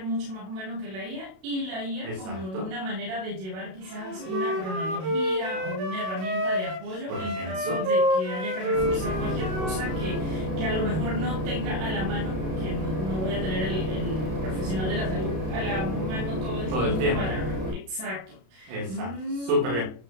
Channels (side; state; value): left; late; 32 ms